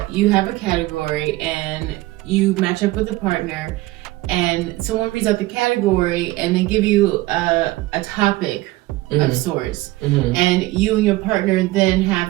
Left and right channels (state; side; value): quieter; left; 18.9 dB